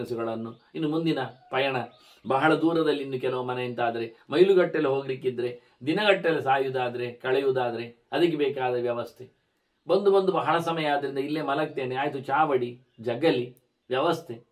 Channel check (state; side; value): identical; both; correlation 1.00